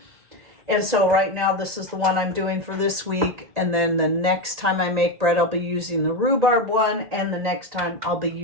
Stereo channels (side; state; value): left; late; 1.8 ms